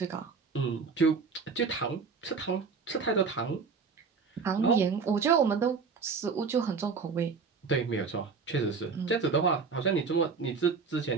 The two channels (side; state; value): left; quieter; 5.2 dB